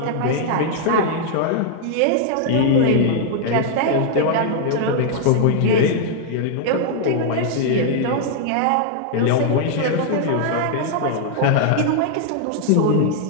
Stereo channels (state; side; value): different; both; correlation 0.00